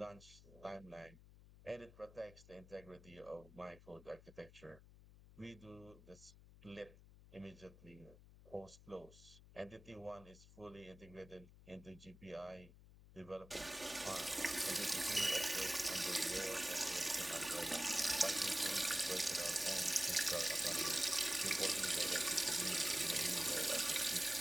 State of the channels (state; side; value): noise; left; hum, 20 dB below the sound